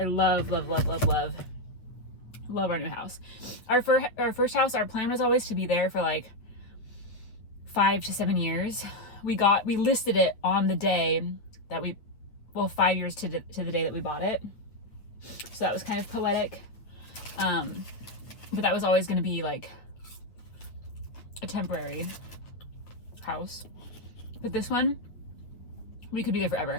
love our new house. Our first house, our plan was always to be there for like 5 to 7 years. We listed it on the day that 5 years to the day that we bought it. So that was kind of poetic. But that was always going to be like a temporary house. But this one, we could be there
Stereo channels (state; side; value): late; right; 8.8 ms